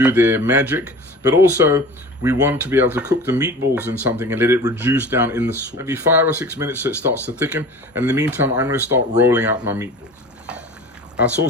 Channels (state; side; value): normal; both; correlation 0.39